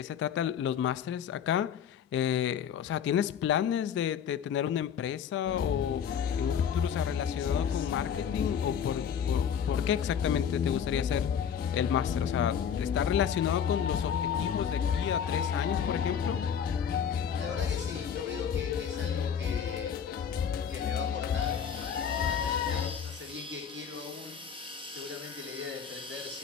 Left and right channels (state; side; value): quieter; right; 8.0 dB